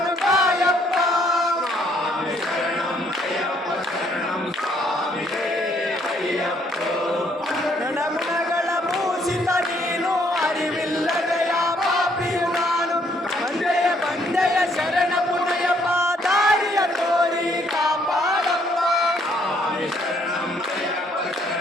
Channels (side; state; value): both; normal; correlation 0.67